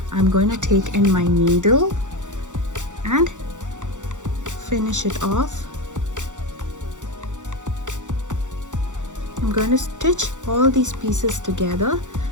I'm going to take in my needle and finish it off. I'm going to stitch all these pieces together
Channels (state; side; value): late; left; 0.85 ms